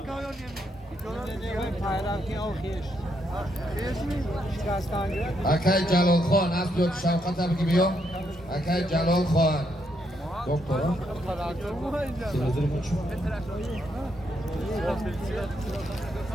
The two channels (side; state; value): both; normal; correlation 0.77